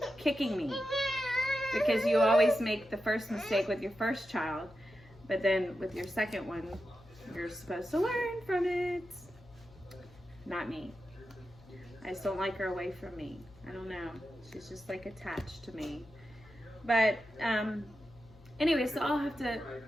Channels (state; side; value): noise; left; hum, 24 dB below the sound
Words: kicking me. Because you always make the first mistake with your first child, but then with your second one, you're supposed to learn from it. Not me. I just don't like her away from me. I don't know. She's just like attached to me. But anyway, so I'll have to